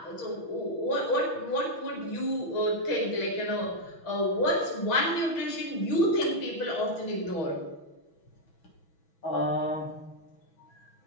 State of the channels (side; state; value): right; late; 6.0 ms